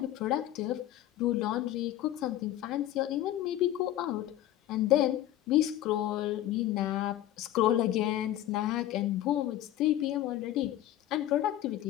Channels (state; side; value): quieter; right; 13.2 dB